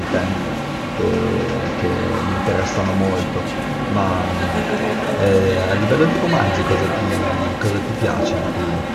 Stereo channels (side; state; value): both; identical; correlation 1.00